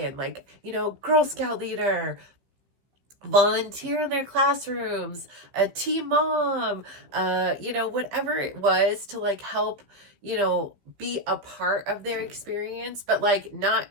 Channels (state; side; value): late; left; 15 ms